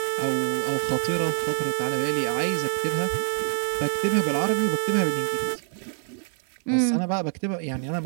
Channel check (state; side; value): silent; left; 59 dB below the other